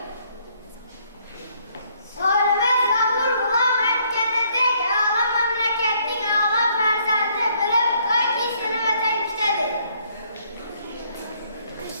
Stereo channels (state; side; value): inverted; both; correlation -0.67